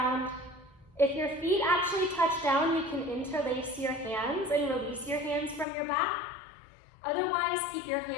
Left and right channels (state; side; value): drops out; right; at 5.7 s